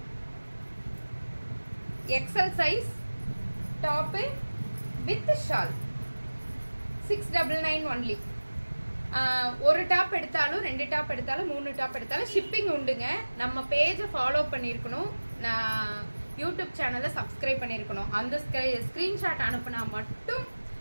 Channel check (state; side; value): inverted; both; correlation -1.00